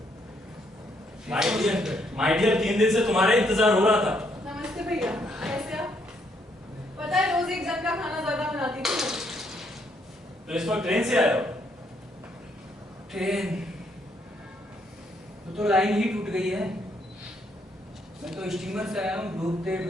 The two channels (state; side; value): normal; both; correlation 0.72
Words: My dear 3 दिन से तुम्हारा इंतजार हो रहा था। नमस्ते भैया, कैसे आप? पता है रोज एक जन का खाना ज्यादा बनाती थी। तो इस वक्त ट्रेन से आए हो? ट्रेन तो लाइन ही टूट गई है। मैं तो स्टीमर से आया हूँ, डूबते